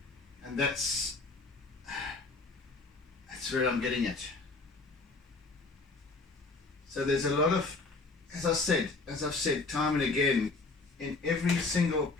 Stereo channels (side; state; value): right; quieter; 3.7 dB